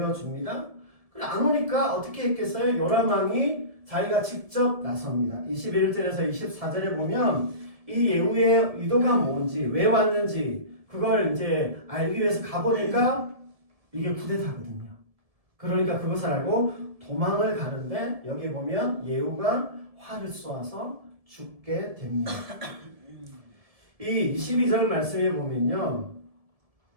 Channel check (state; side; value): late; left; 1.7 ms